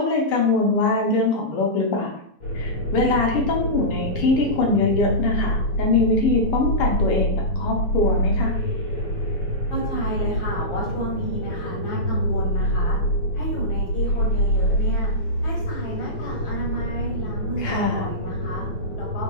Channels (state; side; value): late; right; 7.2 ms